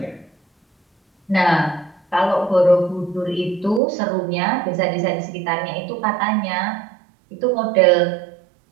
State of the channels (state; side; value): drops out; left; at 3.8 s